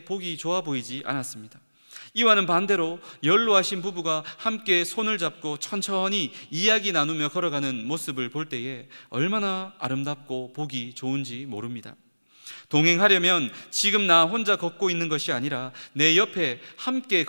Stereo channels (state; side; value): inverted; both; correlation -1.00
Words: 보기 좋아 보이지 않았습니다. 이와는 반대로 연로하신 부부가 함께 손을 잡고 천천히 이야기 나누며 걸어가는 모습을 볼 때에 얼마나 아름답고 보기 좋은지 모릅니다. 동행하려면 지금 나 혼자 걷고 있는 것이 아니라 내 옆에 함께